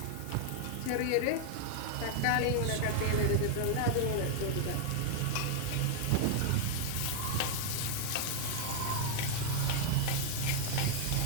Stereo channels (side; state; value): both; different; correlation 0.00